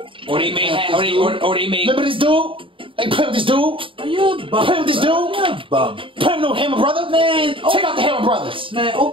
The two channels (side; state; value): left; late; 0.25 ms